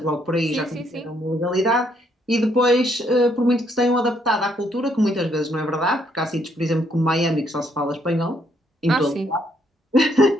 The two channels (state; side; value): normal; both; correlation 0.71